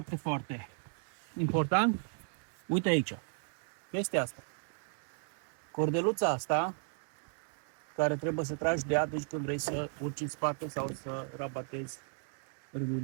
foarte important, uite aici, chestia asta. Cordeluța asta, care trebuie să tragi de ea atunci când vrei să urci în spate sau să rabatezi râul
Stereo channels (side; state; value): left; silent; 54 dB below the other